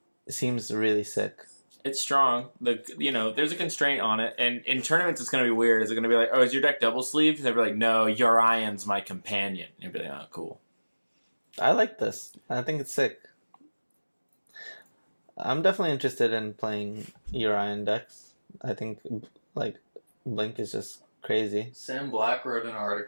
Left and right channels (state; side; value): inverted; both; correlation -1.00